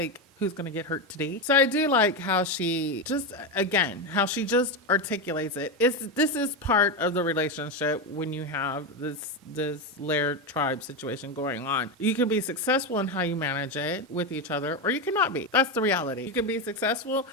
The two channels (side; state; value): both; normal; correlation 0.12